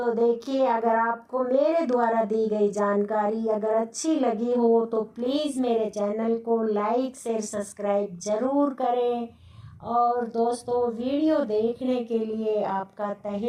देखिए, अगर आपको मेरे द्वारा दी गई जानकारी अगर अच्छी लगी हो तो प्लीज़ मेरे चैनल को लाइक शेयर सब्सक्राइब ज़रूर करें। और दोस्तों, वीडियो देखने के लिए आपका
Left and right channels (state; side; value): identical; both; correlation 1.00